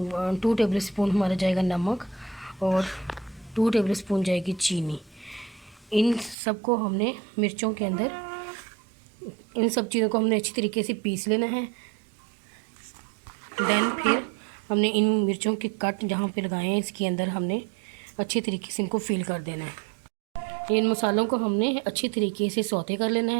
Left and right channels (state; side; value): drops out; left; at 6.4 s